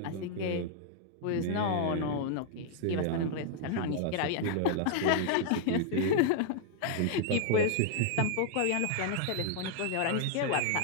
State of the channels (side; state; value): both; different; correlation -0.01